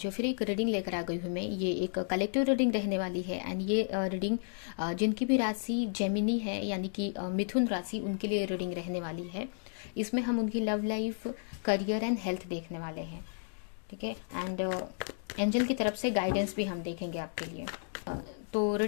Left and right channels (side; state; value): right; silent; digital silence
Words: फिर एक रीडिंग लेकर आ गई हूँ मैं। ये एक कलेक्टिव रीडिंग रहने वाली है एंड ये रीडिंग जिनकी भी राशि जेमिनी है यानी कि मिथुन राशि, उनके लिए रीडिंग रहने वाली है। इसमें हम उनकी love life, career and health देखने वाले हैं। ठीक है। एंड एंजल की तरफ से गाइडेंस भी हम देखेंगे आपके लिए। तो